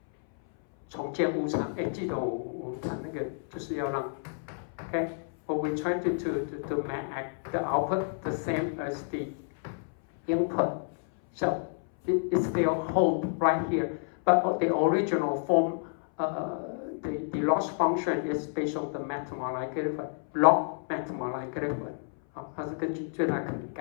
重建误差，记得我讲那个就是要让 ，okay, what we try to make the output the same as the input. So it still hold right here, but the original form, the loss function is based on the mathematical log mathematical. 它是根据最大可能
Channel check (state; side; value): silent; right; 58 dB below the other